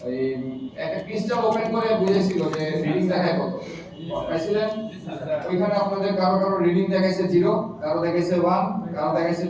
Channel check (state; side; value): identical; both; correlation 1.00